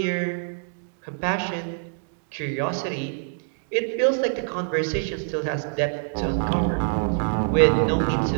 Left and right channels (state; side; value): silent; left; digital silence